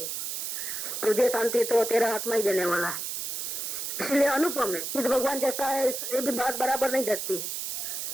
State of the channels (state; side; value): noise; right; hiss, 4 dB below the sound